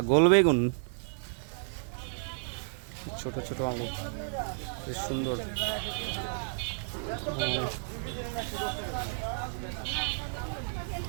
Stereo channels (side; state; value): left; silent; digital silence